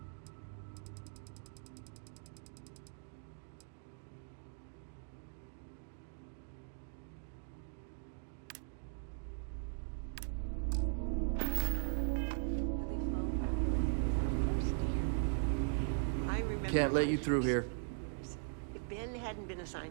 Can't let you through here. If Ben hadn't been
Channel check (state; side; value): silent; left; digital silence